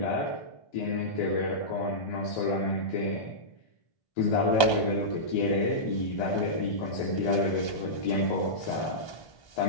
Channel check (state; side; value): late; right; 1.2 ms